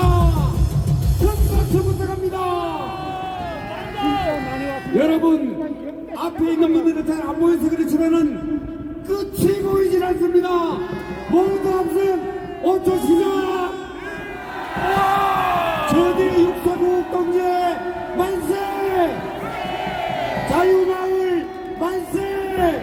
큰 박수 부탁합니다. 여러분, 앞에 있는 분들은 잘 안 보여서 그렇지만은 끝이 보이질 않습니다. 모두 함성 5초 시작! 저들의 육사국 동지 만세! 자유마을 만세!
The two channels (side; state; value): both; identical; correlation 1.00